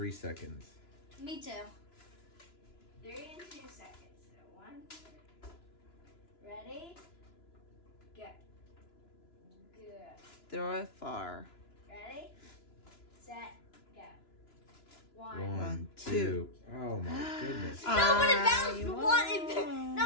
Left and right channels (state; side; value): late; right; 2.9 ms